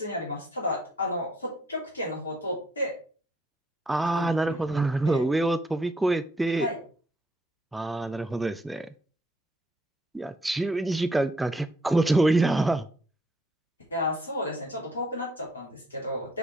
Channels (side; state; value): both; normal; correlation 0.69